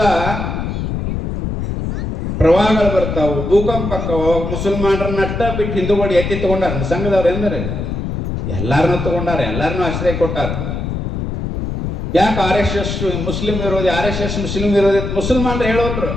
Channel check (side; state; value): left; noise; rumble, 3 dB below the sound